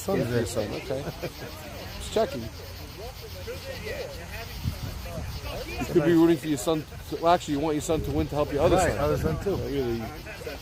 Your there. son. Okay. Just checking. You could be rooting for your son. Well, actually, you want your son to win to help your other Right, son. other son too. Really,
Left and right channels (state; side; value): identical; both; correlation 1.00